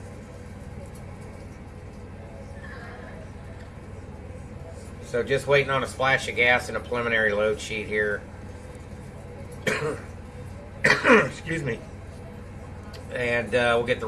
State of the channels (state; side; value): identical; both; correlation 1.00